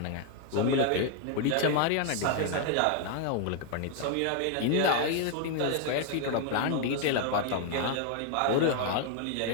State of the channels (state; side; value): different; both; correlation 0.00